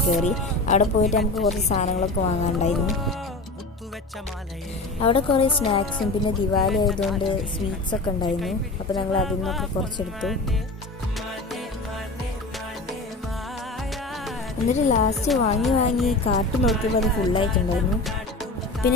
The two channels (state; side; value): quieter; right; 3.1 dB